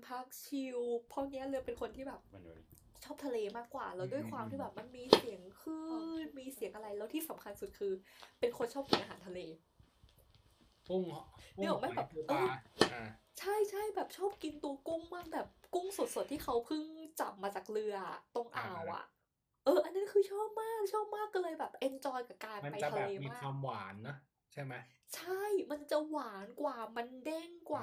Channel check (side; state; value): both; identical; correlation 1.00